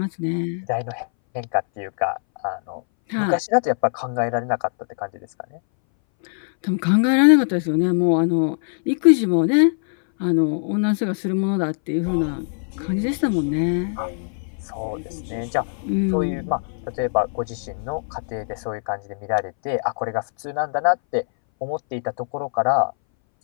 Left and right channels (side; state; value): right; silent; 61 dB below the other